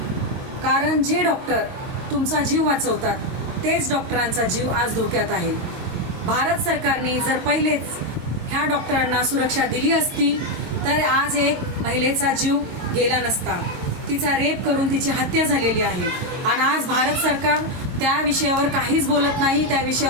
कारण जे डॉक्टर तुमचा जीव वाचवतात तेच डॉक्टरांचा जीव आज धोक्यात आहे। भारत सरकारने जर पहिलेच ह्या डॉक्टरांना सुरक्षा दिली असती तर आज एक महिलेचा जीव गेला नसता। तिचा रेप करून तिची हत्या झालेली आहे आणि आज भारत सरकार त्या विषयावर काहीच बोलत नाही, त्या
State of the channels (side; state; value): left; late; 22 ms